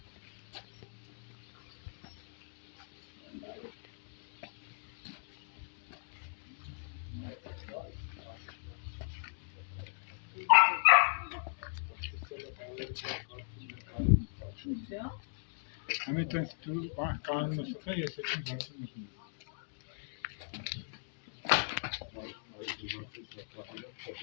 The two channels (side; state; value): right; silent; digital silence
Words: Hamilton tu kanun nasıl yesetin zaten.